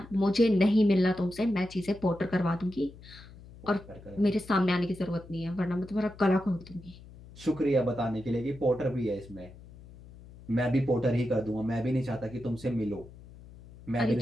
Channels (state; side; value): noise; left; hum, 19 dB below the sound